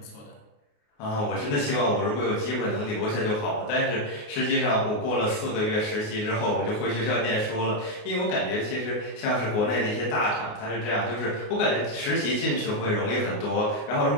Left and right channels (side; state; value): right; late; 29 ms